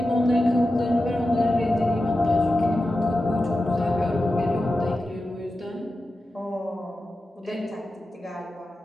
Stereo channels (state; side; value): normal; both; correlation 0.92